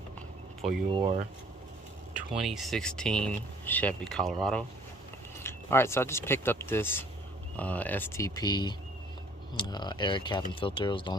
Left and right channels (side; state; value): both; normal; correlation 0.57